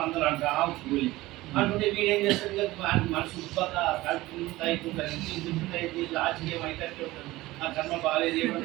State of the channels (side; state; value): left; quieter; 18.5 dB